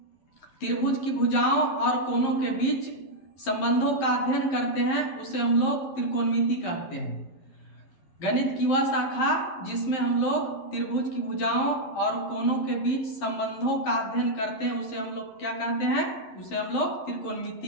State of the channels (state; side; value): late; right; 11 ms